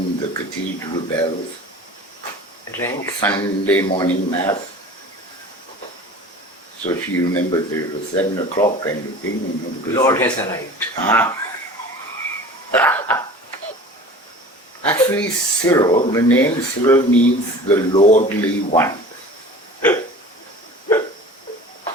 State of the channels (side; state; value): both; normal; correlation 0.40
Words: the cathedral bells, Rank. Sunday morning mass. So she remembers that it was 7 o'clock kind of thing. You know, because Lord has arrived. Ah. Actually, Cyril, the name Cyril means the lordly one.